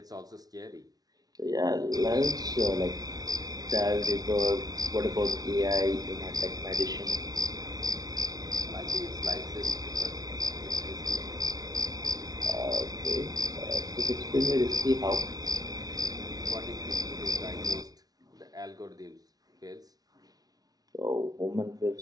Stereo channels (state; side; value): late; left; 0.18 ms